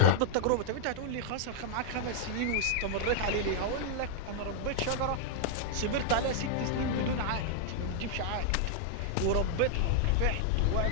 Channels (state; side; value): different; both; correlation -0.01